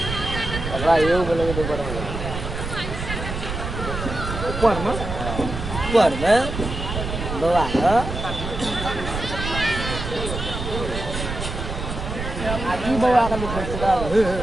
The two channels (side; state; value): right; noise; rumble, 6 dB below the sound